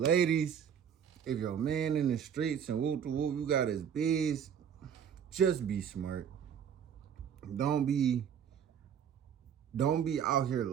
if your man in the streets and whoop to whoop, you got his biz, just be smart. Don't be out here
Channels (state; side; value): quieter; left; 8.2 dB